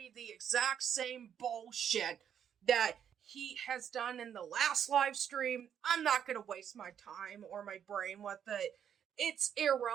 the exact same bullshit that he has done in the last live stream. I'm not gonna waste my time or my brain with it. It's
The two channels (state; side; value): quieter; left; 8.8 dB